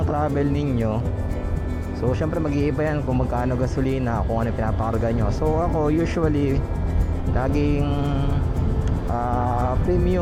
travel ninyo. So syempre mag-iiba yan kung magkano gasolina, kung ano pinapakarga nyo. So ako usually laging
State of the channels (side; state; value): both; identical; correlation 1.00